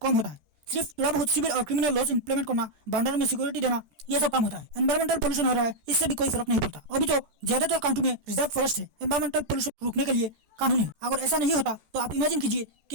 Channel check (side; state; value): left; late; 13 ms